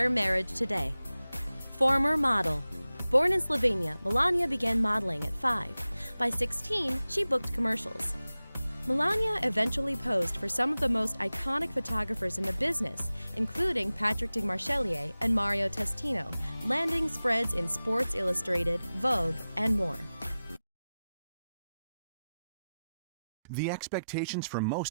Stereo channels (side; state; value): both; inverted; correlation -0.96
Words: marriage today. Former model. Born in Slovenia, Melania began modeling at 5. By 16, she booked commercials. Melania eventually posed for some of the most iconic photographers in the business, including Patrick de Marchelier and Mario Testino, landing spreads in Sports Illustrated, Vogue, and more. The expectations for